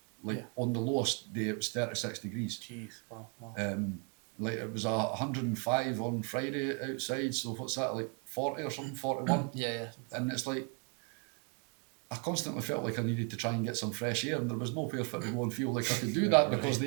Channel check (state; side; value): quieter; left; 37.9 dB